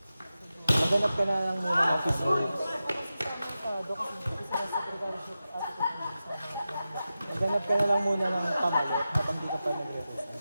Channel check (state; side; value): inverted; both; correlation -0.93